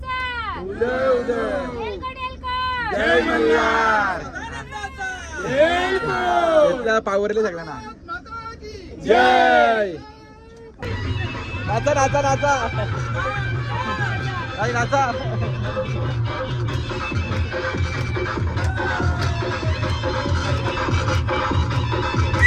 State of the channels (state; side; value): identical; both; correlation 1.00